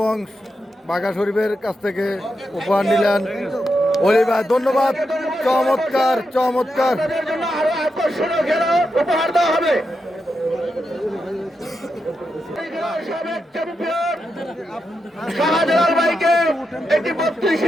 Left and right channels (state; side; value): normal; both; correlation 0.86